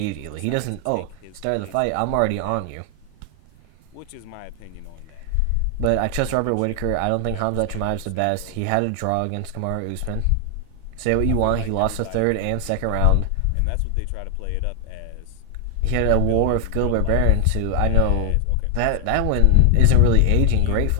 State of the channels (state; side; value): different; both; correlation 0.00